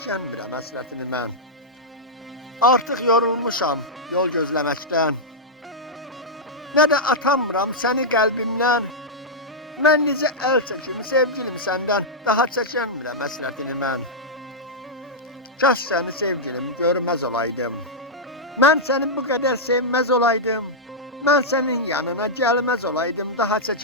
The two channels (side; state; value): both; normal; correlation -0.08